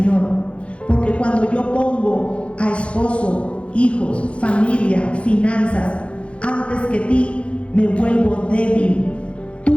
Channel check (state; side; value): late; right; 0.060 ms